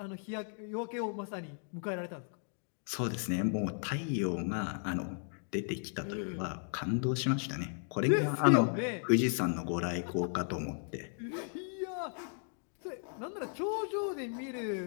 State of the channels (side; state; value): right; silent; 54 dB below the other